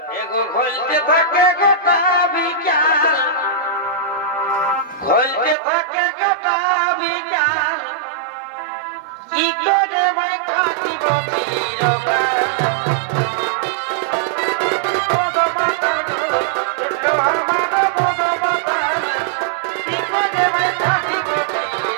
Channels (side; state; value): left; drops out; at 5.6 s